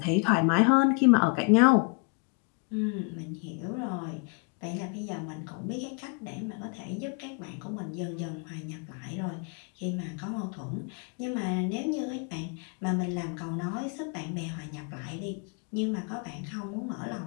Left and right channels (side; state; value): right; quieter; 34.1 dB